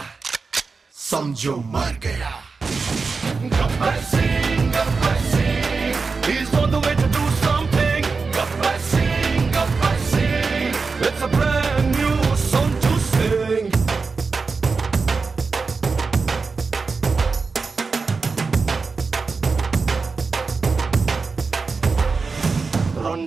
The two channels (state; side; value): quieter; left; 4.5 dB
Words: समझो मर गया Gabbar Singh he's on the way to do something Gabbar Singh it's a brand new song to sing